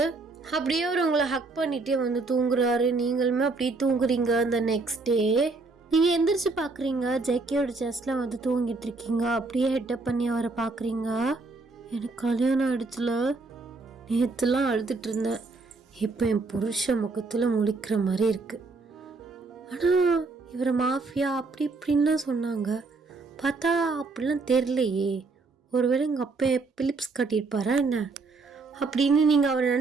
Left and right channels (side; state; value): left; quieter; 3.8 dB